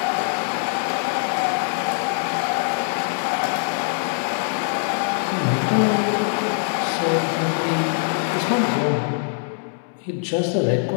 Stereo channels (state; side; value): silent; right; digital silence